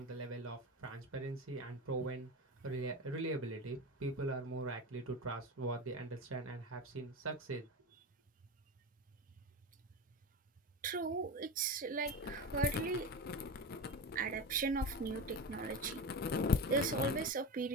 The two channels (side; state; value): both; normal; correlation 0.24